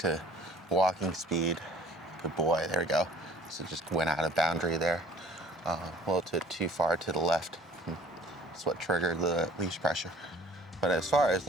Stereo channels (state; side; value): normal; both; correlation 0.51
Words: walking speed, good boy, there we go. So just went out of boundary there. A little too far to the left. That's what triggered the leash pressure. But as far as